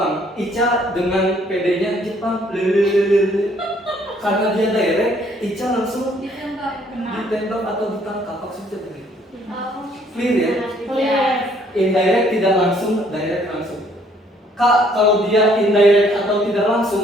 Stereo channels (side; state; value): both; normal; correlation 0.63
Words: Ica dengan PD-nya Jepang, karena dia direct, Ica langsung ditembak atau ditangkap. Maksudnya begitu. Clear ya? Clear. Indirect tidak langsung, direct langsung. Kak, kalau dia indirect atau tidak